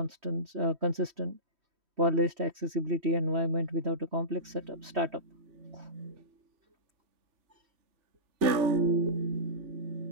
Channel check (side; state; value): left; late; 3.4 ms